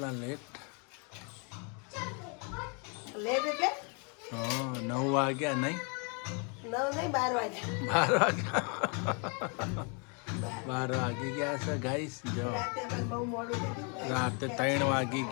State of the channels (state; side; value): quieter; right; 35.8 dB